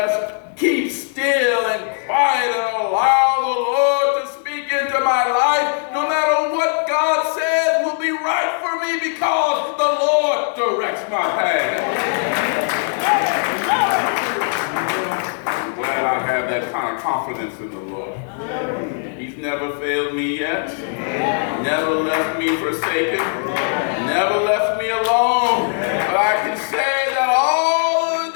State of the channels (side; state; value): right; silent; 62 dB below the other